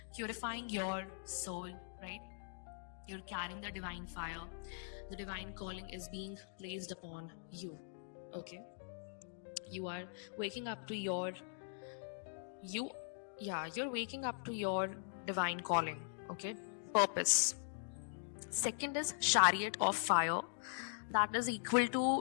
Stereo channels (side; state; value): right; silent; digital silence